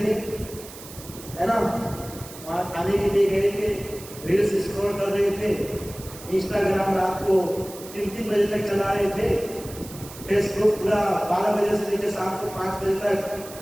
है ना, वहाँ खाने के लिए गए थे, रील्स स्क्रॉल कर रहे थे, इंस्टाग्राम रात को 3-3 बजे तक चला रहे थे, फेसबुक पूरा 12 बजे से लेकर शाम को 5 बजे तक,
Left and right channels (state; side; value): noise; right; hiss, 16 dB below the sound